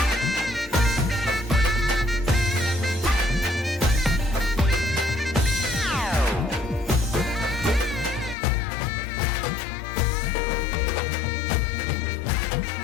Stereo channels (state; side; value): drops out; right; at 8.3 s